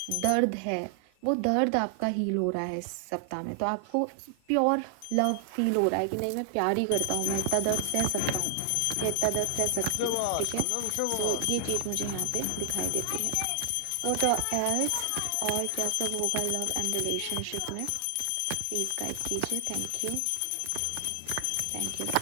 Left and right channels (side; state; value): both; different; correlation 0.00